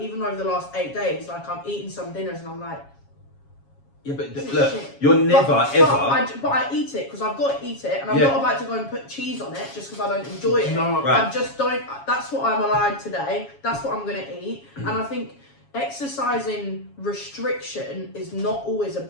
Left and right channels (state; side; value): late; right; 7.3 ms